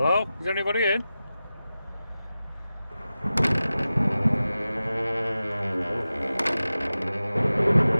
Hello? Is anybody in?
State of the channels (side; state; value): both; inverted; correlation -0.94